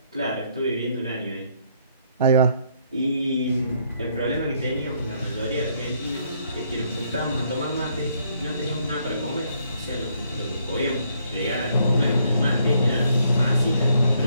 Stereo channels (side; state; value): both; inverted; correlation -0.70